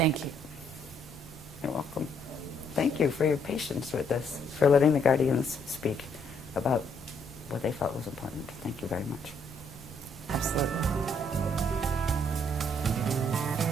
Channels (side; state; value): both; normal; correlation 0.69